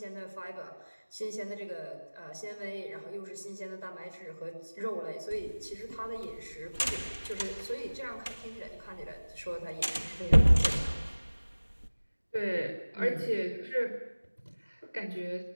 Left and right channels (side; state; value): both; inverted; correlation -1.00